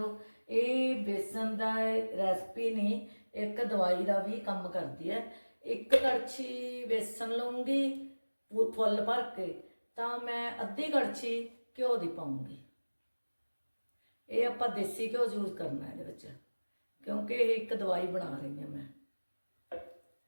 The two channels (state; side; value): inverted; both; correlation -1.00